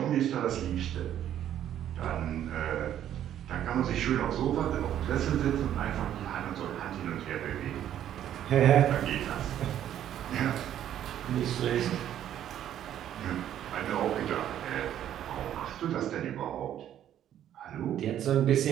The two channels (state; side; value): quieter; left; 10.9 dB